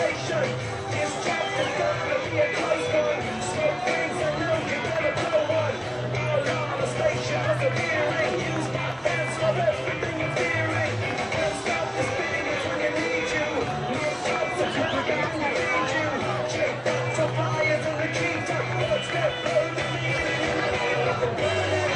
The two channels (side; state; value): both; identical; correlation 1.00